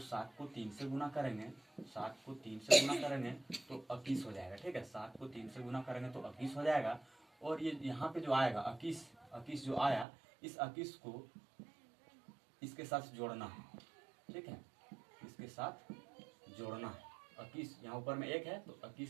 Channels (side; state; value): left; drops out; at 10.1 s